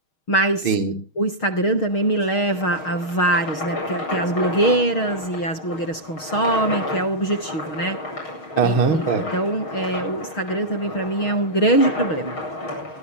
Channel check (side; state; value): right; late; 6.4 ms